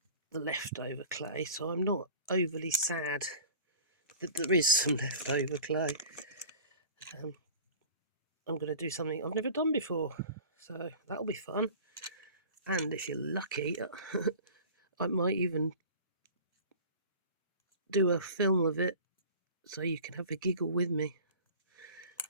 the leftover clay, so I'm not overly sad that there is some leftover clay. I'm going to do something I've never done before, so that'll be fun. And if you're lucky, I might even do a film of it so you can have a giggle with me.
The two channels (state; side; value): inverted; both; correlation -0.41